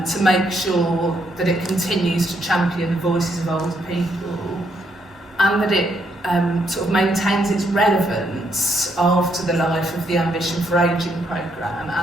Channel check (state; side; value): normal; both; correlation 0.74